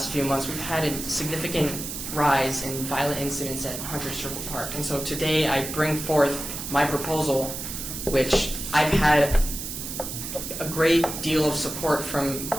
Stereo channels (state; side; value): noise; right; hiss, 7 dB below the sound